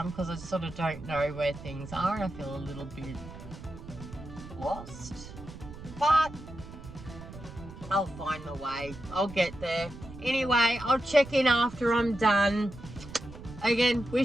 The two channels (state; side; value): noise; right; rumble, 14 dB below the sound